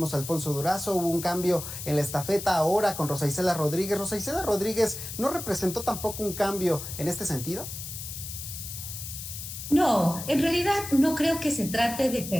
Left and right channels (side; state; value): left; noise; hiss, 9 dB below the sound